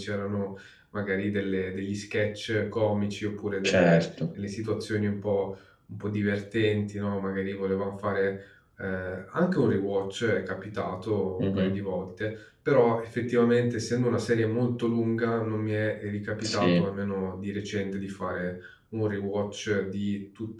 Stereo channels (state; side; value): identical; both; correlation 1.00